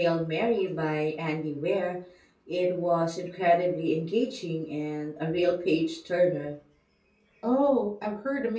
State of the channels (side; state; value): both; identical; correlation 1.00